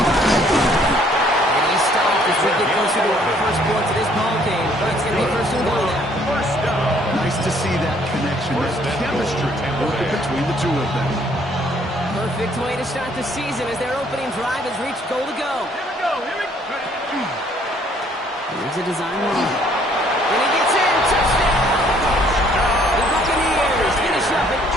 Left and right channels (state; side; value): normal; both; correlation 0.63